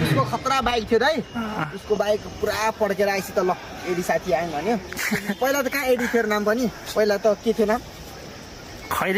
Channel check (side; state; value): both; identical; correlation 1.00